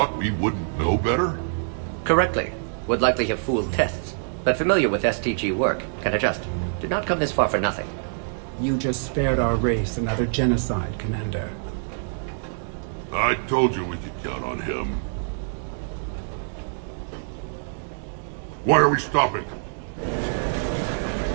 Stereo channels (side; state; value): left; silent; digital silence